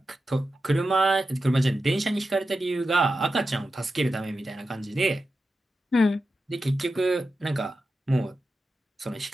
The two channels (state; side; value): normal; both; correlation 0.90